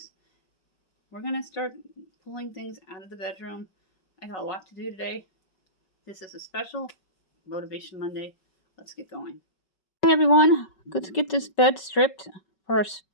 We're going to start pulling things out of the bedroom. I got a lot to do today. This is a special Motivation Monday. Let's get going. Hey everyone, let's get this bed stripped for our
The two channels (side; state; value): right; late; 5.3 ms